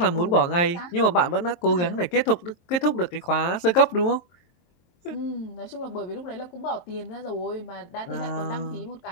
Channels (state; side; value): late; right; 23 ms